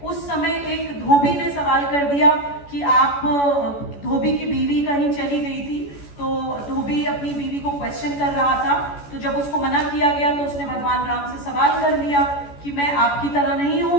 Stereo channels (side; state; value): right; late; 14 ms